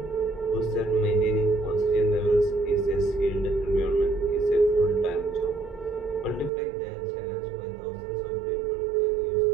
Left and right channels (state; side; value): drops out; left; at 6.5 s